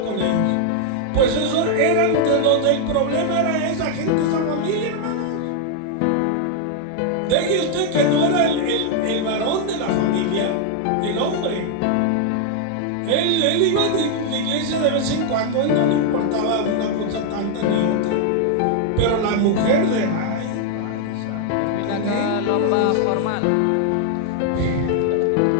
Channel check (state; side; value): different; both; correlation 0.00